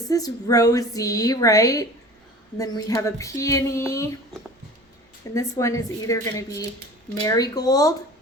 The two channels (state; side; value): normal; both; correlation 0.41